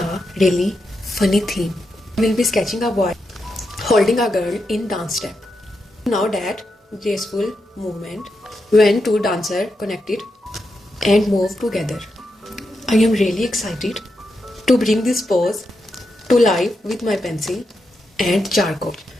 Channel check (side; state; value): both; normal; correlation 0.86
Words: really funny theme. We'll be sketching a boy holding a girl in dance step. Now that graceful movement when two dancers connected and move together. I am really excited to bring this pose to life with my pencil and charcoal.